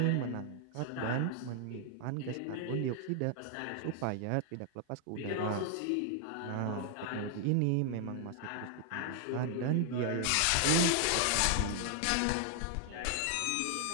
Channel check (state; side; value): different; both; correlation 0.00